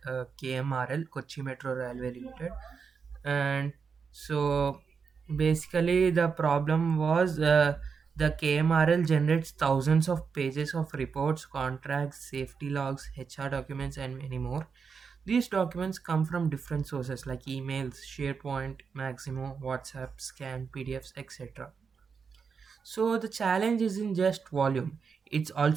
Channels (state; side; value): quieter; left; 5.8 dB